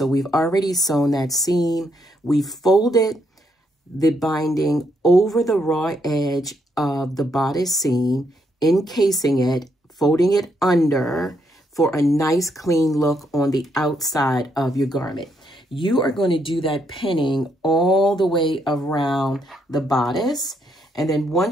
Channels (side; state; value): both; normal; correlation 0.76